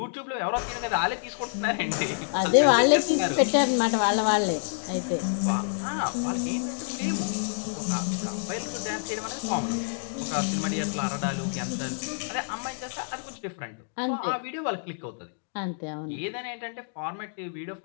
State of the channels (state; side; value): silent; right; digital silence